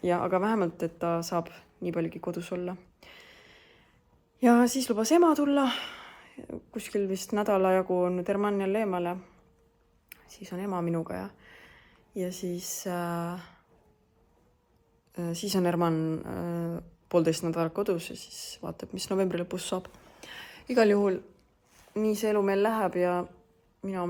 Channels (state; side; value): identical; both; correlation 1.00